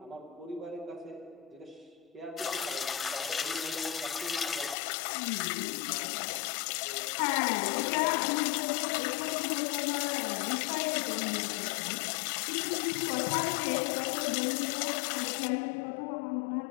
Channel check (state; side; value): drops out; right; at 4.8 s